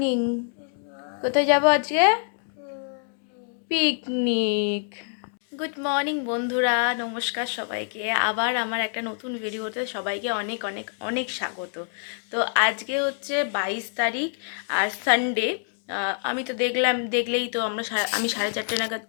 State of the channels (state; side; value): silent; right; 61 dB below the other